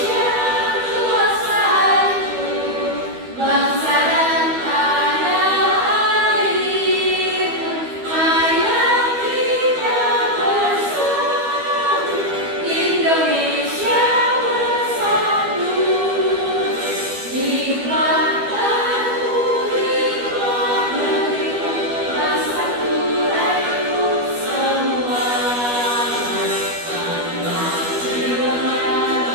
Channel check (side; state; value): left; late; 12 ms